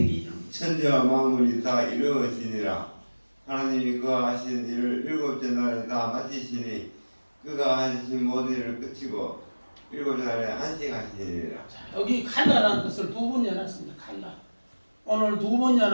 2장 천지와 만물이 다 이루어지니라. 하나님이 그가 하신 일을 일곱째 날에 다 마치시니 그가 하신 모든 일을 끝이고 일곱째 날에 안식하시니라. 여기 칼라라는 뜻을 두 번 연했습니다. 칼라. 오늘 두 번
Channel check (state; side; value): inverted; both; correlation -1.00